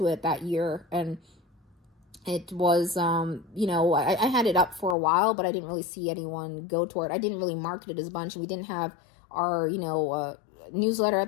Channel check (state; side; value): drops out; right; at 5.0 s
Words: it that year. And it was, I had it up for a while, but I didn't really see anyone go toward it. I didn't really market it as a bunch. We didn't have our, newsletter at